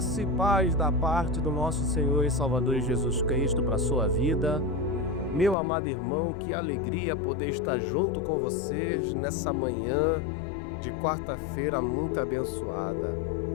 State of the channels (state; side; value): drops out; right; at 5.6 s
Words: e paz da parte do nosso Senhor e Salvador Jesus Cristo para a sua vida. Meu amado irmão, que alegria poder estar junto com vocês nessa manhã de quarta-feira muito abençoada.